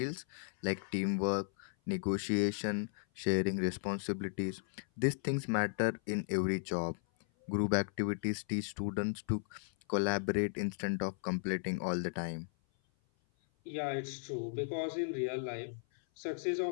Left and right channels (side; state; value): right; silent; 54 dB below the other